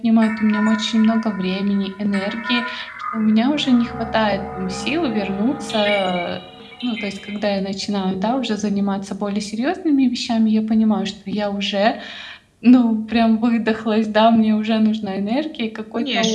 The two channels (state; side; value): identical; both; correlation 1.00